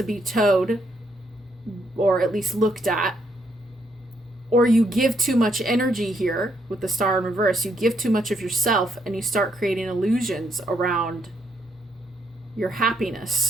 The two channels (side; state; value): both; normal; correlation 0.75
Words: be towed, or at least looked at, or you give too much energy here with the Star in reverse. You give too much of yourself and you start creating illusions around your